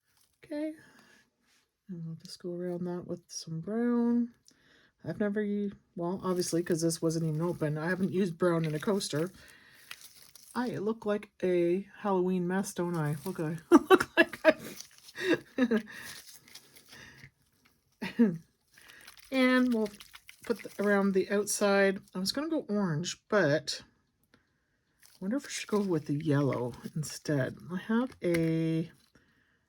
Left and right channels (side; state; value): both; identical; correlation 1.00